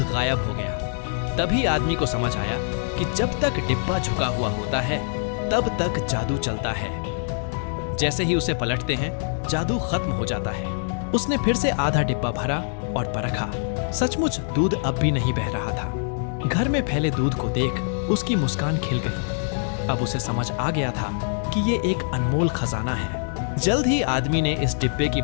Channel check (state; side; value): silent; right; 62 dB below the other